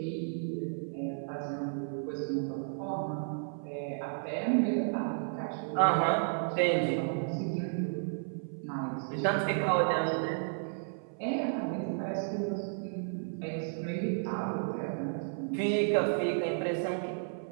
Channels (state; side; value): silent; left; 56 dB below the other